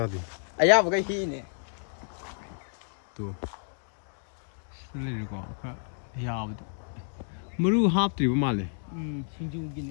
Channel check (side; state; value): right; silent; digital silence